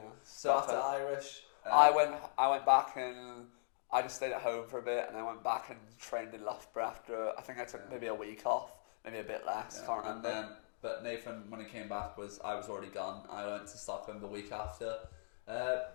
So after Irish, I went back and I just stayed at home for a bit, and I went back and trained in Loughborough after. I think I took maybe a week off, maybe a bit less. Can't remember. But Nathan, when he came back, I was already gone. I went to Stockholm the week after.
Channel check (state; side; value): silent; right; digital silence